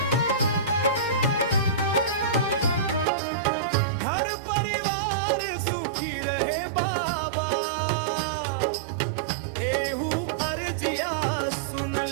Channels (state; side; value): drops out; left; at 3.1 s